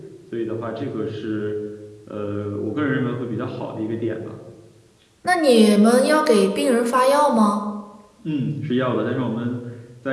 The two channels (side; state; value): both; identical; correlation 1.00